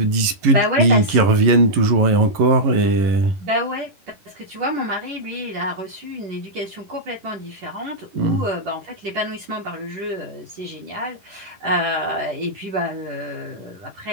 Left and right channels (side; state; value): left; late; 11 ms